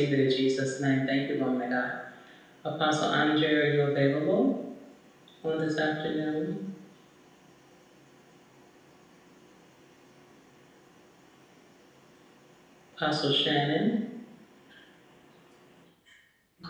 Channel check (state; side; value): identical; both; correlation 1.00